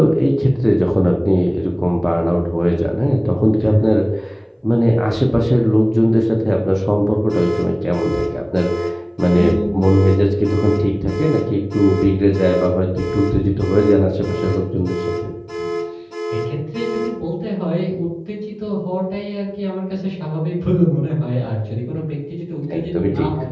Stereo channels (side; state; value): both; identical; correlation 1.00